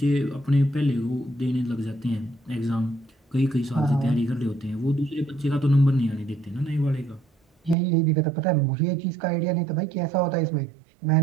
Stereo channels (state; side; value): drops out; left; at 7.8 s